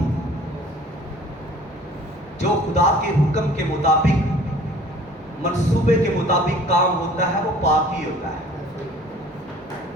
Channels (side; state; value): both; normal; correlation 0.50